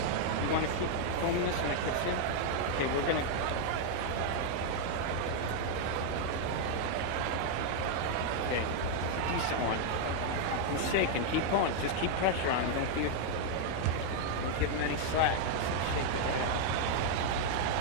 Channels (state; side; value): different; both; correlation 0.00